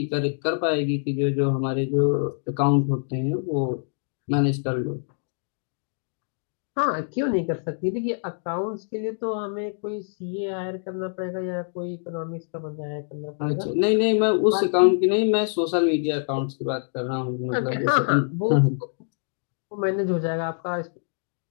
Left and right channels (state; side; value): silent; right; digital silence